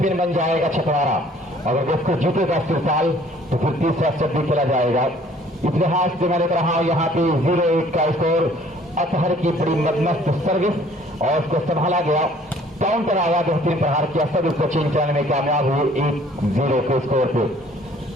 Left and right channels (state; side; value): normal; both; correlation 0.56